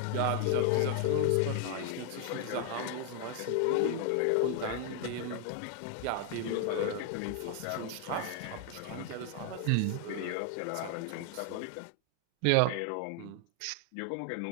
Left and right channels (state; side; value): different; both; correlation 0.00